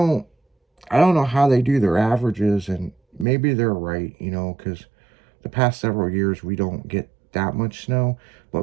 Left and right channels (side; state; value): left; drops out; at 3.2 s